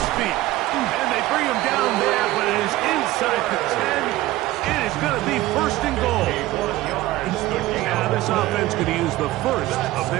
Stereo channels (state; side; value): quieter; left; 16.9 dB